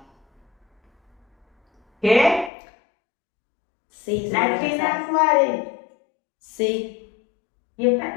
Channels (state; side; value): drops out; right; at 2.5 s